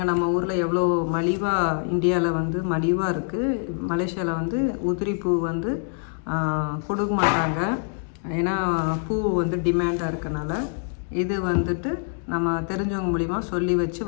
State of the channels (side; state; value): right; silent; 56 dB below the other